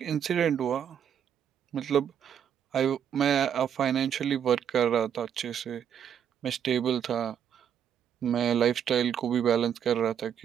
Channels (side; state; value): left; quieter; 8.7 dB